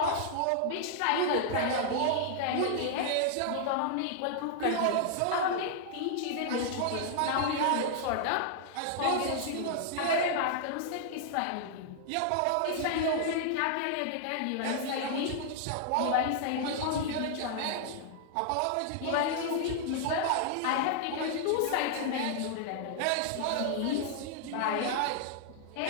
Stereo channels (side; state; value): both; different; correlation -0.01